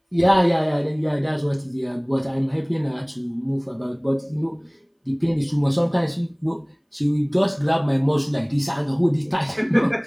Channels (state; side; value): identical; both; correlation 1.00